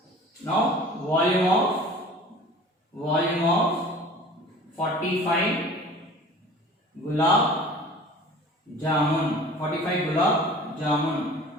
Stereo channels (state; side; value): normal; both; correlation 0.43